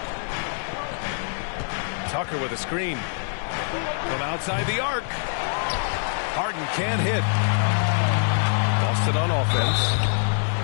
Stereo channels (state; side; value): silent; right; 62 dB below the other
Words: Tucker with a screen. From outside the arc. Harden can't hit. Boston on offense.